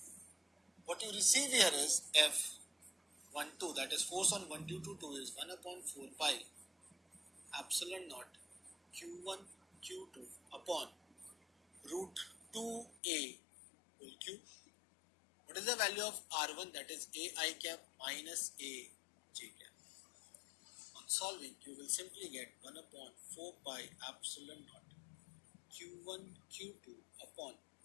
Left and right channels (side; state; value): right; drops out; at 13.0 s